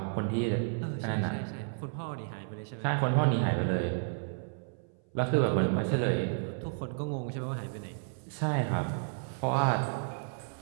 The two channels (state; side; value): silent; left; 56 dB below the other